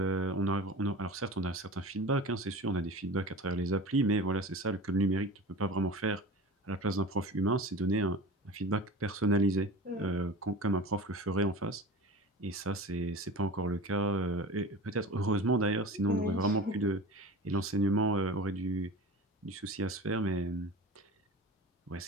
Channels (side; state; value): both; normal; correlation 0.35